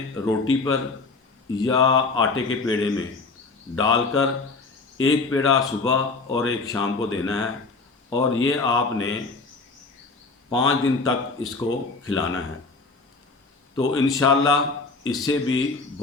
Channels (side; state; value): right; quieter; 3.9 dB